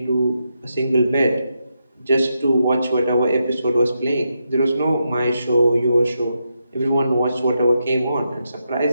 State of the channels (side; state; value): both; inverted; correlation -0.84